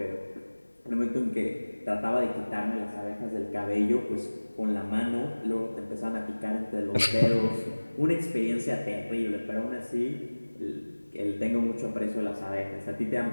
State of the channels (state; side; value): inverted; both; correlation -1.00